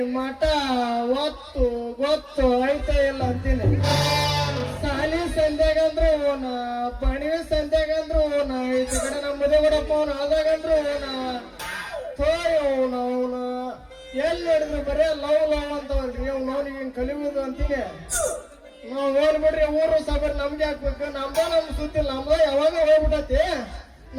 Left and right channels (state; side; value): identical; both; correlation 1.00